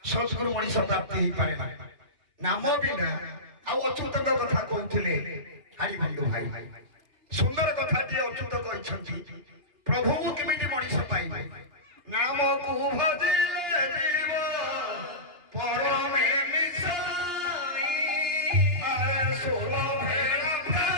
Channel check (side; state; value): left; late; 2.8 ms